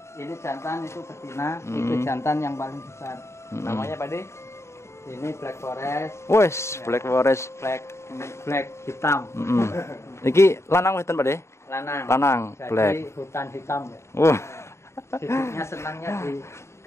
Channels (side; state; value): right; late; 0.13 ms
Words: Ini jantan, itu betina, Mm. itu jantan yang paling besar. Mm-mm. Namanya Pak De? Ini black forest, Wes, Black Forest. ini black hitam, Mm-mm. Iki lanang wedan, Pak De? lanang. Lanang, Jadi black. hutan hitam. Ya. Wah. Hidupnya senangnya di